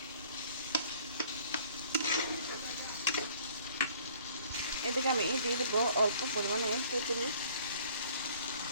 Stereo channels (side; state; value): both; inverted; correlation -0.55